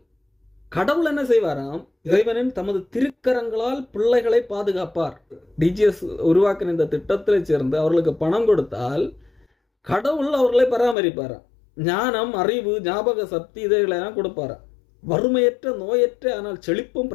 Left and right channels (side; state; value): right; drops out; at 11.0 s